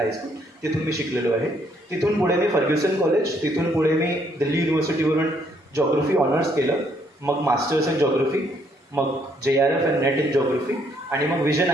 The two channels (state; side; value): normal; both; correlation 0.69